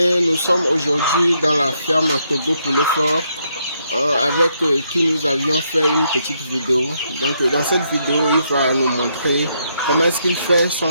nous sommes aujourd'hui dans la ferme Togo Poulet Fort avec qui nous avions fait une petite vidéo. Donc dans cette vidéo, il va nous montrer comment est-ce qu'il fait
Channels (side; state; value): both; inverted; correlation -0.76